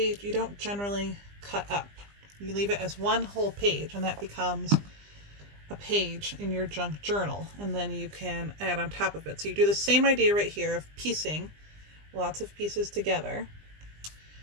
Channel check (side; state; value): left; late; 20 ms